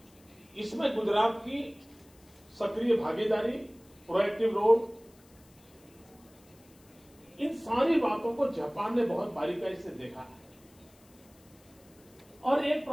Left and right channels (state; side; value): noise; left; hiss, 28 dB below the sound